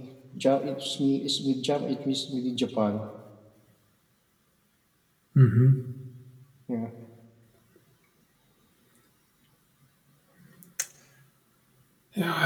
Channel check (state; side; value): identical; both; correlation 1.00